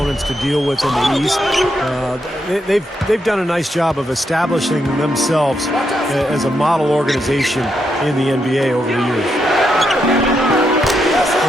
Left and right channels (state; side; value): normal; both; correlation 0.81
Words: to deal with in the East. They've done a nice job of establishing themselves as a model organization in the NBA over the years.